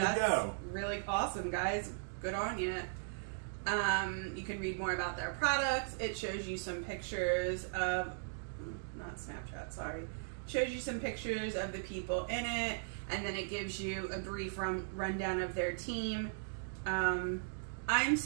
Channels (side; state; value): left; silent; digital silence